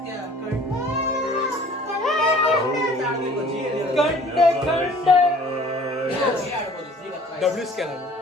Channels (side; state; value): both; normal; correlation 0.51